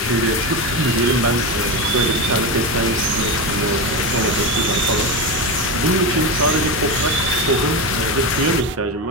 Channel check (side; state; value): both; normal; correlation 0.18